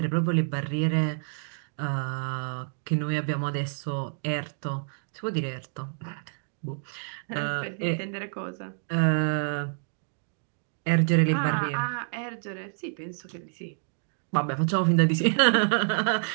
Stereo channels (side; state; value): left; silent; digital silence